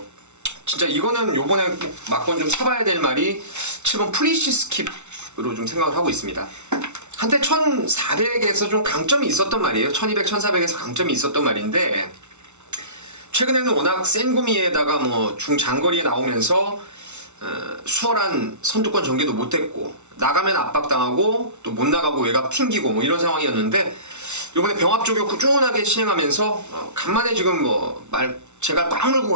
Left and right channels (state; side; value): late; left; 0.82 ms